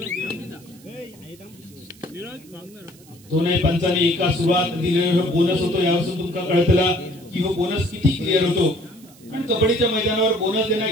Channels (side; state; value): right; noise; hiss, 25 dB below the sound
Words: दोन्ही पंचांनी एका सुरुवात दिलेला बोनस होतो. यापासून तुमका कळतला की हो बोनस किती क्लिअर होतो. पण कबड्डीच्या मैदानावर बोनस देणं